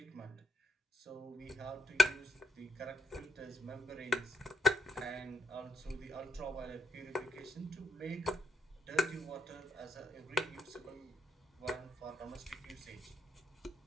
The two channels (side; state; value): both; normal; correlation 0.74